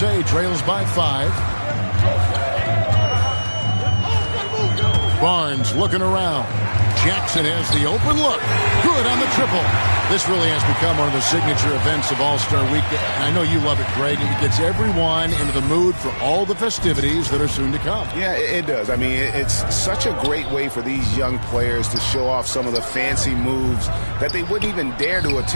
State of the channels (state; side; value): inverted; both; correlation -1.00